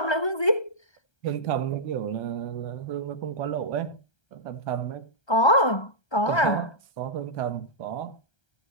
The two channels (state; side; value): late; right; 1.3 ms